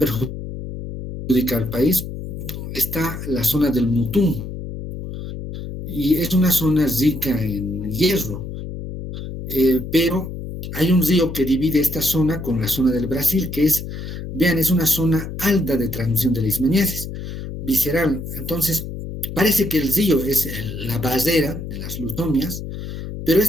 al país, está la zona del Mutún, y es una zona rica en hierro, pero Hay un río que divide esta zona con la zona del Brasil, que es, vean, es una zona alta de transmisión de leishmaniasis visceral. Entonces, parece que el río es la barrera de las leucomias, pero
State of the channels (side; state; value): left; noise; hum, 8 dB below the sound